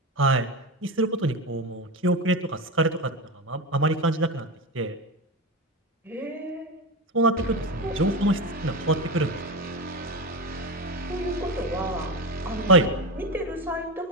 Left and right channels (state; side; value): normal; both; correlation 0.18